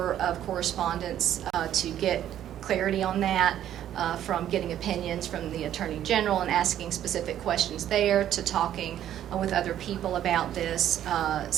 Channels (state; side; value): quieter; left; 11.2 dB